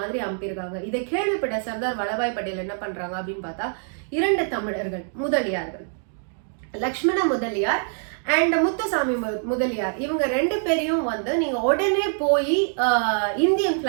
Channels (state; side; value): silent; left; 62 dB below the other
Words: மாதிரி அனுப்பியிருக்காங்க. இதை கேள்விப்பட்ட சர்தார் வல்லபாய் பட்டேல் என்ன பண்றாங்க அப்படின்னு பார்த்தா, 2 தமிழர்கள் முதலியார்கள், லக்ஷ்மண முதலியார் அண்ட் முத்துசாமி முதலியார், இவங்க 2 பேரையும் வந்து நீங்க உடனே போய் இந்தியன்